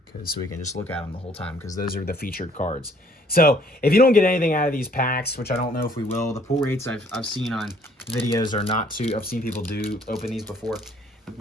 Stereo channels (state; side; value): normal; both; correlation 0.60